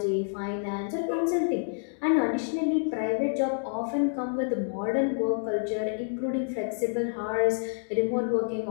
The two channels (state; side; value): silent; right; digital silence